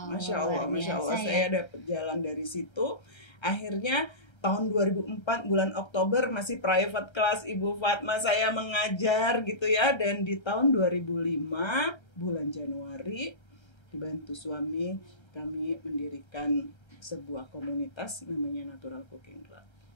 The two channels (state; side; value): late; right; 1.3 ms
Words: Masya Allah. Saya dapat jalan dari situ. Akhirnya tahun 2004 bulan Oktober masih private class Ibu Fatma saya mengajar gitu ya. Dan di tahun 2005 bulan Januari dibantu suami kami mendirikan sebuah komunitas namanya Natural Cooking Club.